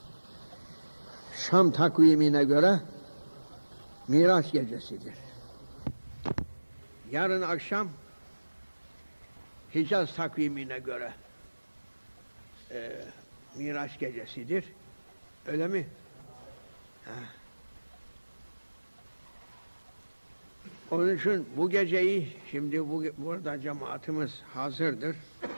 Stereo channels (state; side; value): inverted; both; correlation -1.00